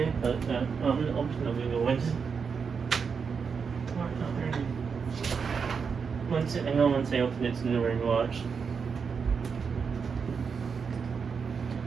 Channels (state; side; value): quieter; left; 5.9 dB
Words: but I'm going to open the window. I know once I open it's in the rain watch.